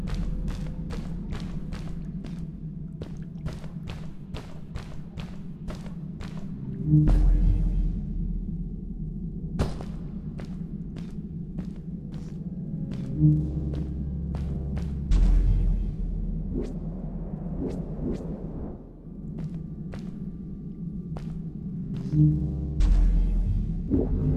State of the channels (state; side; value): identical; both; correlation 1.00